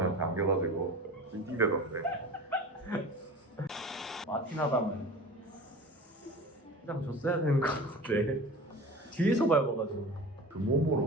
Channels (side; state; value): both; normal; correlation 0.36